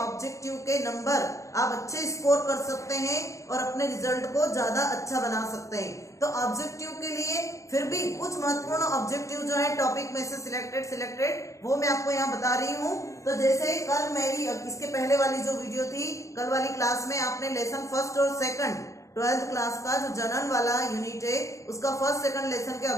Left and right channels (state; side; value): late; right; 0.15 ms